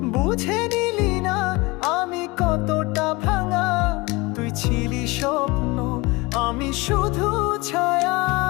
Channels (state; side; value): quieter; right; 23.7 dB